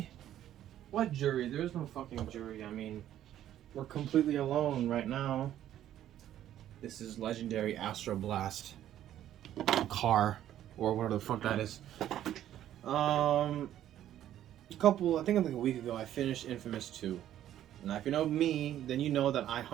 What jury? There's no fucking jury. I mean, we're completely alone right now. This is legendary Astro Blast car, or whatever the fuck that is. I think like a week ago, I finished inFAMOUS 2. Now, if you know me, then you know that I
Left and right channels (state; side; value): quieter; left; 11.8 dB